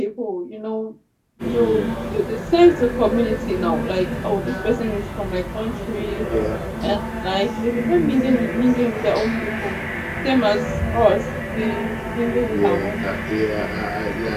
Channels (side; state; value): both; identical; correlation 1.00